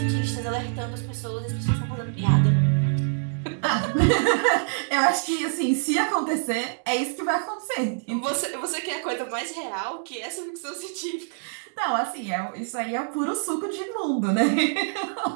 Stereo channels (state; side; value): silent; left; digital silence